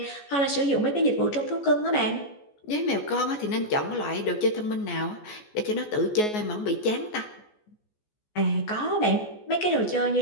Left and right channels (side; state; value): right; late; 14 ms